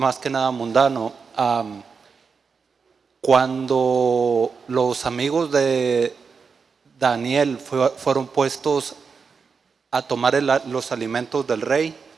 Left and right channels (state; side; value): quieter; left; 5.4 dB